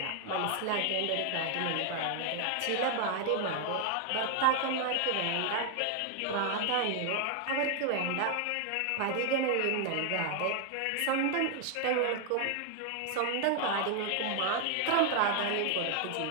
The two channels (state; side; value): different; both; correlation 0.00